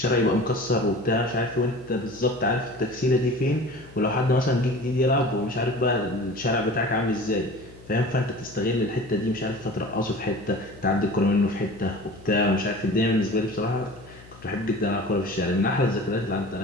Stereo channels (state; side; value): noise; left; hum, 21 dB below the sound